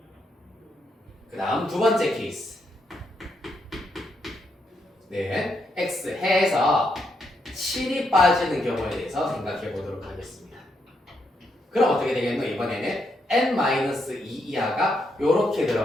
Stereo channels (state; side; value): normal; both; correlation 0.79